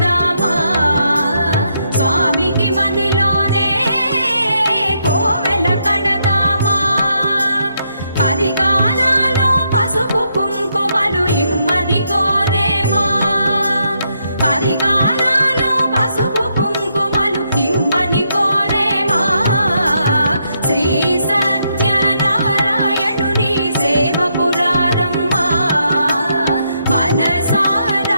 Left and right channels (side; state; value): both; inverted; correlation -0.77